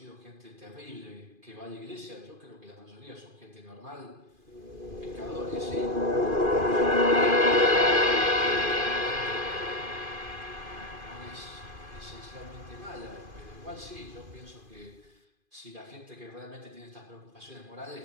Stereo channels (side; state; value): left; late; 2.5 ms